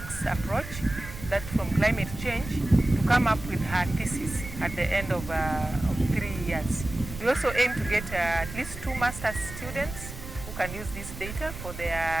approach, that from climate change, to come up with her thesis at the end of 3 years. We also aim to get at least 2 master's students who can use this data for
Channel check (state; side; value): noise; right; rumble, 10 dB below the sound